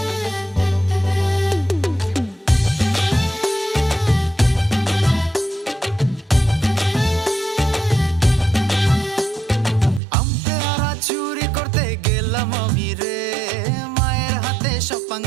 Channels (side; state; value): left; drops out; at 10.0 s